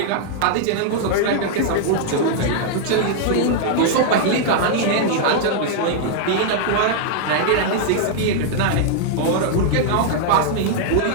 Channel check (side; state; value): both; different; correlation -0.01